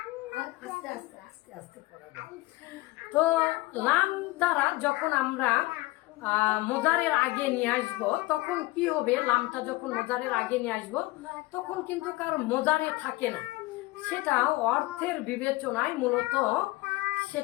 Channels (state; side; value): quieter; right; 20.5 dB